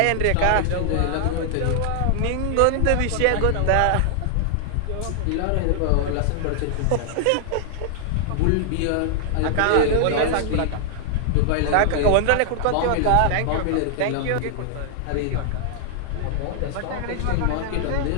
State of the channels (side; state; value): both; different; correlation 0.00